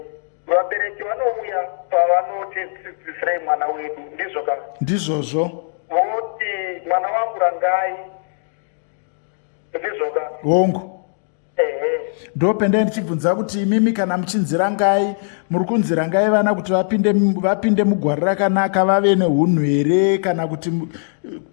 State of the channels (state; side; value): silent; right; digital silence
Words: Vabereki vanouya pavanotidzidzisirei mwana wedu, ndizvo ka? Ndizvozvo. Voti mwana wangu rangai, ndizvo ka? Hongu. Ndopenda ndichibvunza kuti imimi kana muchinzirangai, muri kunzirangai vana kuti vapinde mugwari rakanaka, vave neunhu here, kana kuti